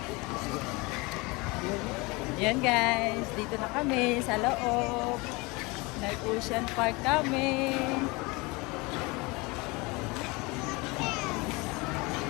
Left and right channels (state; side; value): quieter; right; 25.4 dB